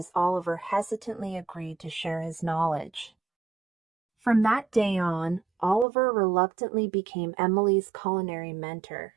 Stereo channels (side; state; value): left; drops out; at 5.9 s